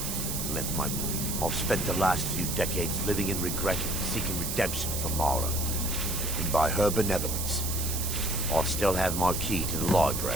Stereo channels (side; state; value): right; noise; hiss, 3 dB below the sound